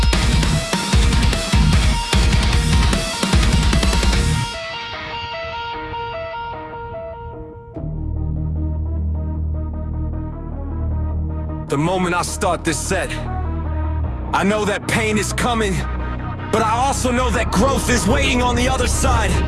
The moment I start this set, I know that pain is coming, but I also know that growth is waiting on the other side.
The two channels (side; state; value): both; identical; correlation 1.00